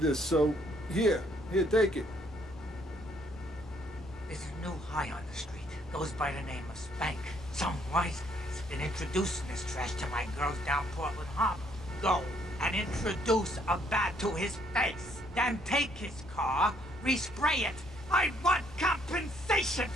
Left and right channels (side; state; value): both; normal; correlation 0.68